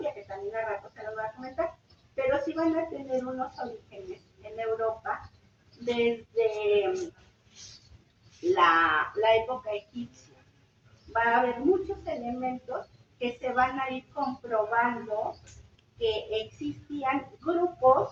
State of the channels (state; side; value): identical; both; correlation 1.00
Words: que también a rato se los voy a comentar, pero sí van a tener unos orígenes en Europa desde la época egipcia. Va a haber muchos elementos que se van a ir comprobando que existían